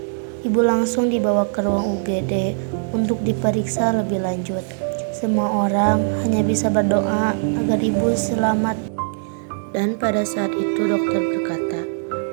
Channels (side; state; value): left; silent; digital silence